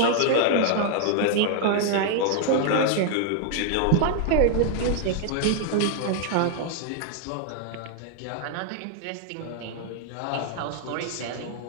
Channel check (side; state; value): both; different; correlation 0.00